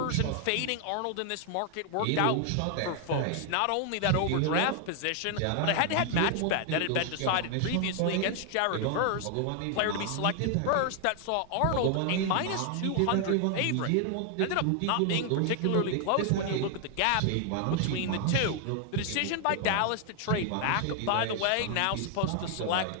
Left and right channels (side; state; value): both; different; correlation 0.00